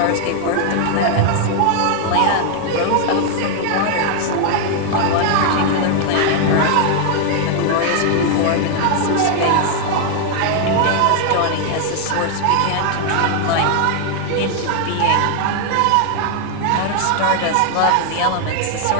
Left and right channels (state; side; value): different; both; correlation 0.00